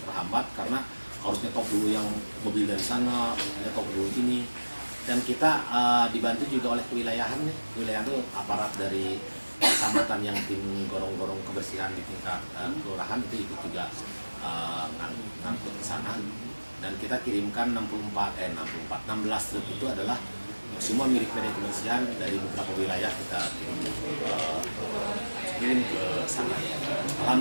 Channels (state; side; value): inverted; both; correlation -1.00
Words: karena harus nyetok dulu yang mobil dari sana, nyetok dulu ini. Dan kita dibantu juga oleh kewilayahan nih. Kewilayahan itu aparat dari kecamatan yang tim gorong-gorong kebersihan di tingkat kelurahan itu ikut juga ngangkut ke sana. Dan kita kirimkan 16 truk itu adalah semua milik PD Kebersihan dari beberapa wilayah, kita kirim ke sana.